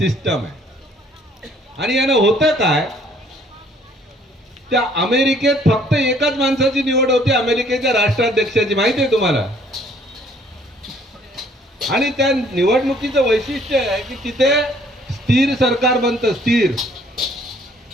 आहे. आणि यानं होतं काय, त्या अमेरिकेत फक्त एकाच माणसाची निवड होते, अमेरिकेच्या राष्ट्राध्यक्षाची, माहिती आहे तुम्हाला. आणि त्या निवडणुकीचं वैशिष्ट्य आहे की तिथे स्थिर सरकार बनतं. स्थिर,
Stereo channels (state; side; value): normal; both; correlation 0.61